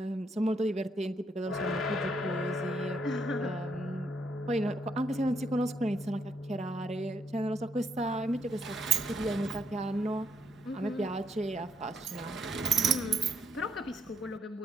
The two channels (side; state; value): both; normal; correlation 0.73